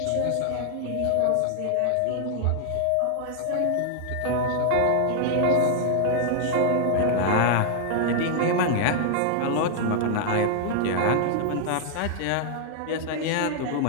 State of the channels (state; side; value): different; both; correlation 0.00